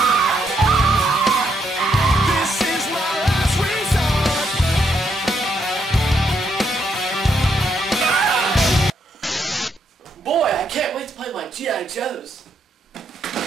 Boy, I can't wait to play my G.I. Joes.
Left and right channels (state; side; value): normal; both; correlation 0.76